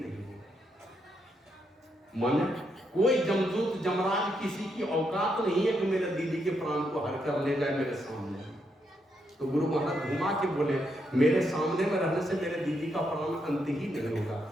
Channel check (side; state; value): both; normal; correlation 0.79